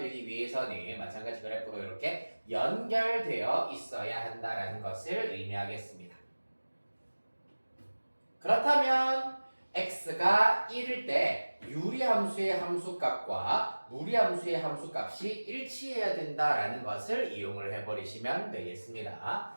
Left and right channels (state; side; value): inverted; both; correlation -1.00